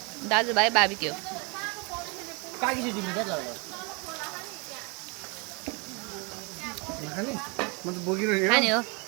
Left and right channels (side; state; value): left; quieter; 31.6 dB